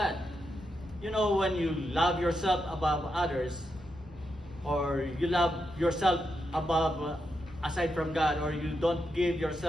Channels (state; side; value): normal; both; correlation 0.85